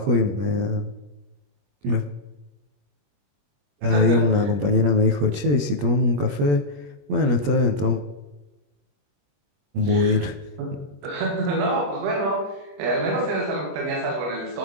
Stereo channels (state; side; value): late; left; 21 ms